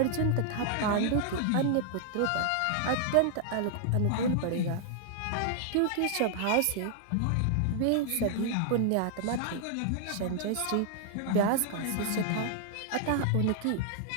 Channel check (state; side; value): different; both; correlation -0.01